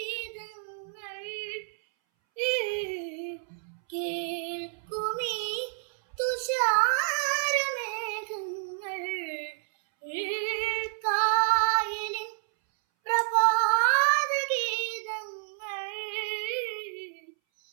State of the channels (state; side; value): silent; left; 58 dB below the other